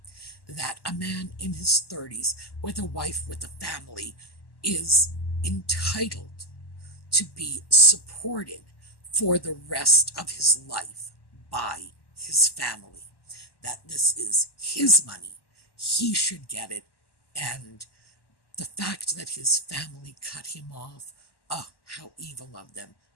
that a man in his 30s with a wife with a family is entitled to be supported for the rest of his life by his family, that this is his money, he should get it, and the fact that his family cut him off, oh, how evil of them.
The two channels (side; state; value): right; late; 1.1 ms